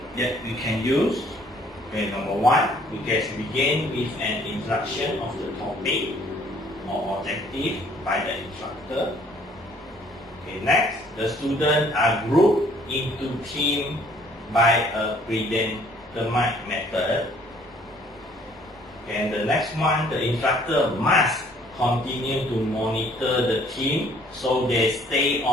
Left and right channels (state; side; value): normal; both; correlation 0.60